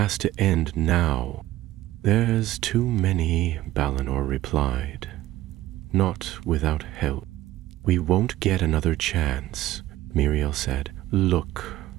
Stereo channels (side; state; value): left; quieter; 15.4 dB